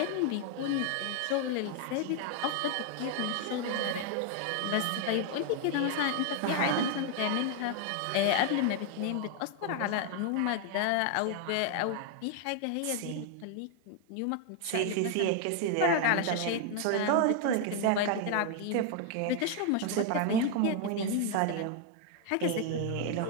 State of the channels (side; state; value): both; different; correlation 0.00